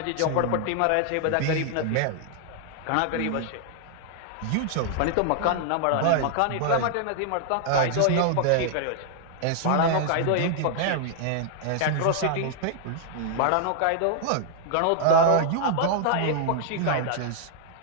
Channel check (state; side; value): different; both; correlation 0.00